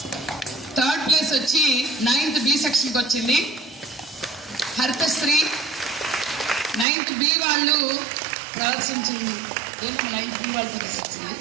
థర్డ్ ప్లేస్ వచ్చి 9th B సెక్షన్కి వచ్చింది హరితశ్రీ. 9th B వాళ్ళు ప్రదర్శించింది. 9th B వాళ్ళు ప్రదర్శించింది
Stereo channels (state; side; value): drops out; left; at 6.9 s